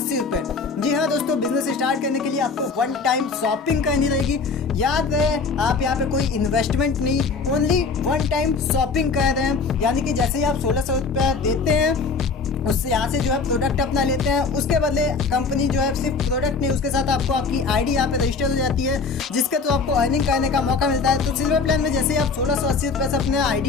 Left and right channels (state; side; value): quieter; right; 4.6 dB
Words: रुपये, जी हाँ दोस्तों, बिजनेस स्टार्ट करने के लिए आपको 1 टाइम शॉपिंग करनी रहेगी। याद रहे आप यहाँ पे कोई इन्वेस्टमेंट नहीं, ओनली 1 टाइम शॉपिंग कर रहे हैं। यानी कि जैसे ही आप 1,600 रुपये देते हैं उससे यहाँ से जो है प्रोडक्ट अपना लेते हैं, उसके बदले कंपनी जो है सिर्फ प्रोडक्ट नहीं उसके साथ आपको आपकी आईडी यहाँ पे रजिस्टर हो जाती है जिसके तो आपको अर्निंग करने का मौका मिलता है। तो सिल्वर प्लान में जैसे ही आप 1,680 रुपये से अपने